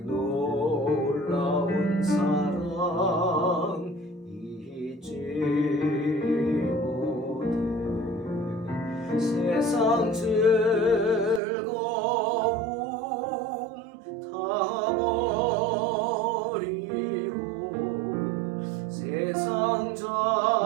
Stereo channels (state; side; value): drops out; left; at 11.4 s